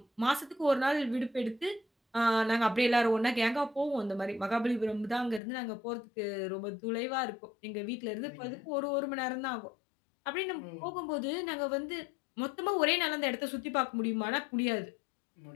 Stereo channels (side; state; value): right; drops out; at 5.4 s